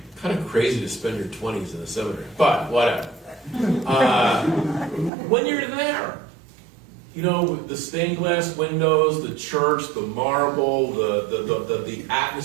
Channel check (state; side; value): drops out; left; at 5.1 s